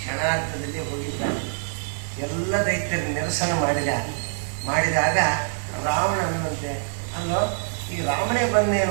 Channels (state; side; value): silent; left; 55 dB below the other